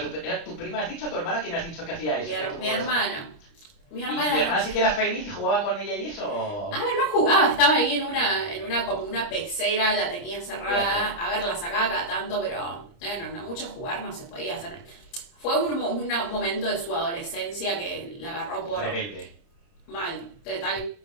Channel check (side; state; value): right; late; 30 ms